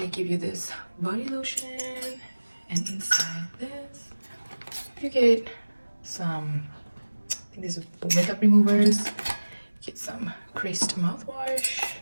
give you this body lotion, and inside this you get some, I think this is makeup removers. You get some creased mouthwash.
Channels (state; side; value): inverted; both; correlation -1.00